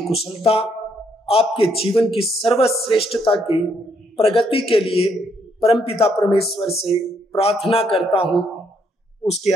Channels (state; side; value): normal; both; correlation 0.72